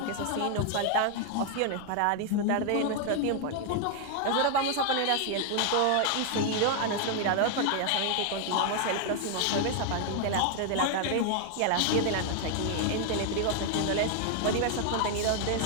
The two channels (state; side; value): different; both; correlation 0.00